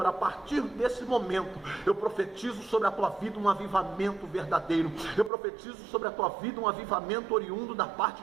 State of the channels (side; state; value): left; drops out; at 5.3 s